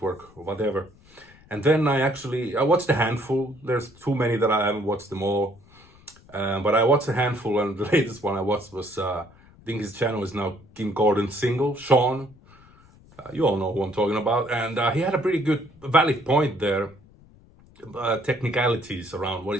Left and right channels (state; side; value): noise; left; rumble, 26 dB below the sound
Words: or whatever. And then I watched a handful. There's too many that I haven't watched them all. But I watched a handful, and the latest one I watched was, I think his channel is now Kim Gordon's single, Shawn. You all know who I'm talking about. And he had a pretty good, valid point there. Technicalities around what